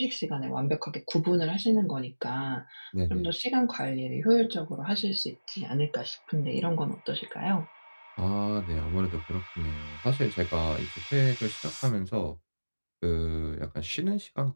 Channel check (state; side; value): inverted; both; correlation -1.00